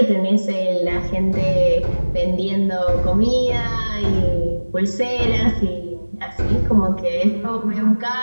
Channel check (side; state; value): both; inverted; correlation -1.00